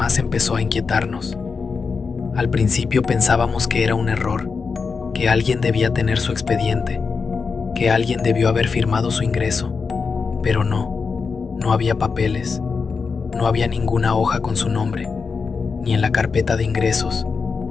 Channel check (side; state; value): right; quieter; 5.1 dB